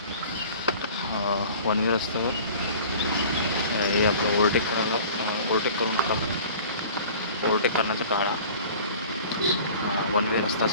वन वे रस्त्यावर हे आपलं ओव्हरटेक करून नका. ओव्हरटेक करण्याचा टाळा. वन वे रस्ता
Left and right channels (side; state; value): both; inverted; correlation -0.44